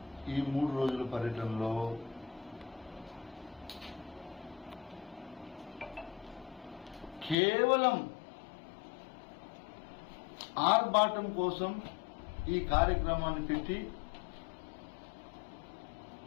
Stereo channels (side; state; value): right; drops out; at 7.4 s